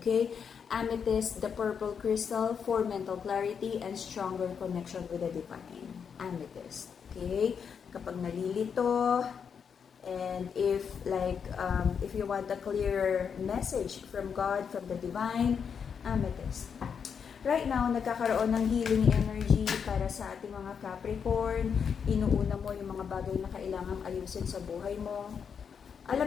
Amethyst, the purple crystal, for mental clarity and stronger connection with the divine. Amethyst. Okay? Kapag nalilito, and if you want a clear message from God, from the divine, amethyst. Right now, nagkakaroon ng healing energy para sa ating mga Capricorn. Inuuna mo yung mga bagay na kailangang ayusin sa buhay mo.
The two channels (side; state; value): right; quieter; 6.8 dB